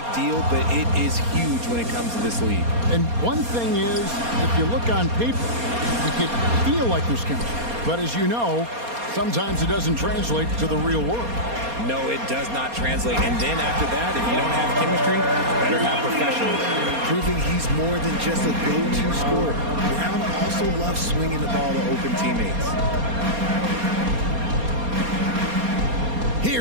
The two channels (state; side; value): late; left; 4.2 ms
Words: deal, but it is huge when it comes to this league. And one thing is, if you look on paper, you can feel like there's chemistry. But as you know, sometimes it doesn't translate to the real world. No, it does not translate. And then after that, if you don't have chemistry, better have professionals. Proving he's more than just a go-to scorer. Brown also loves swinging the ball to open teammates.